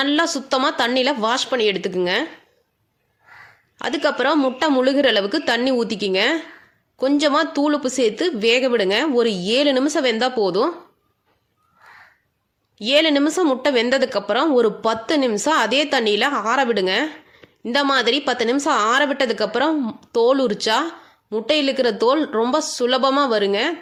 சுத்தமாக தண்ணியில் வாஷ் பண்ணி எடுத்துக்குங்க. அதுக்கப்புறம் முட்டை முழுகிற அளவுக்கு தண்ணி ஊற்றிக்கிங்க. கொஞ்சமாக தூளுப்பு சேர்த்து வேக விடுங்க. ஒரு 7 நிமிஷம் வெந்தால் போதும். 7 நிமிஷம் முட்டை வெந்ததுக்கப்புறம் ஒரு 10 நிமிஷம் அதே தண்ணியில் ஆற விடுங்க. இந்த மாதிரி 10 நிமிஷம் ஆற விட்டதுக்கப்புறம் தோல் உரிச்சா முட்டையில் இருக்கிற தோல் ரொம்ப சுலபமாக வருங்க.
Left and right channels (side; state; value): both; identical; correlation 1.00